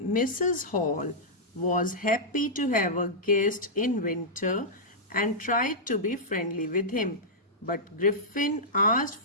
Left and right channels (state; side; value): normal; both; correlation -0.11